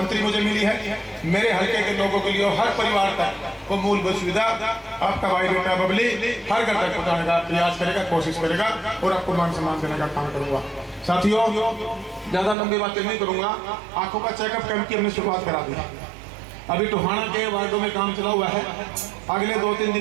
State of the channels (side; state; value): left; drops out; at 12.6 s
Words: मुझे मिली है, मेरे हल्के के लोगों के लिए और हर परिवार तक वो मूलभूत सुविधा आपका भाई बेटा बबली हर घर तक पहुंचाने का प्रयास करेगा, कोशिश करेगा और आपको मान सम्मान देने का काम करूंगा। साथियों, ज्यादा लंबी बातें नहीं करूंगा, आंखों का चेकअप कैंप की हमने शुरुआत करा दी। अभी टोहाना के वार्डों में काम चला हुआ है। अगले 2-3